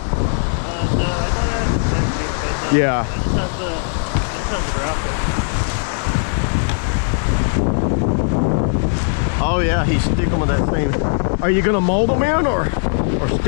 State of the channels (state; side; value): silent; right; 67 dB below the other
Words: I thought Yeah. It just has the Oh yeah, he's sticking with that thing. Are you gonna mold them in or